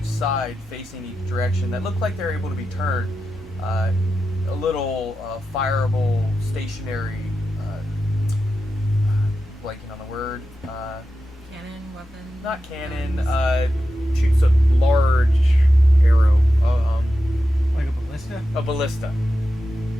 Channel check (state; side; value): normal; both; correlation 0.90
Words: side facing each direction that look like they're able to be turned. A little fireable stationary, blanking on the word. Cannon, weapon. Not cannon. Shoots a large arrow. Like a ballista? A ballista.